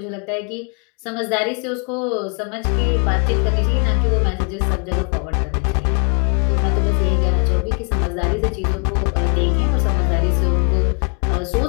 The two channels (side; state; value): right; quieter; 38.6 dB